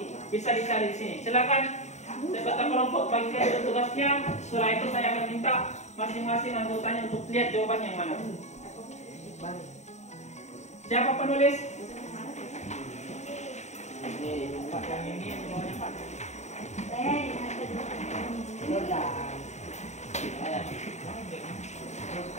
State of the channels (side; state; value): right; late; 0.33 ms